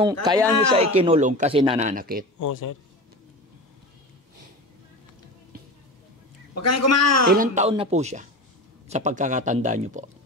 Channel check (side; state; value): both; normal; correlation 0.30